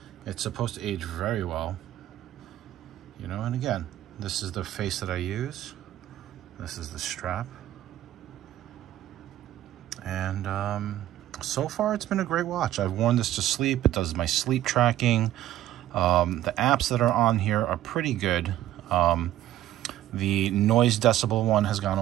it's supposed to age very well, you know. And again, this is the face that I use. This is the strap. And so far it's been a great watch. I've worn this to sleep. It does my sleep tracking. The apps that are on here are pretty good. The noise decibel one has gone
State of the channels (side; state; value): left; quieter; 13.4 dB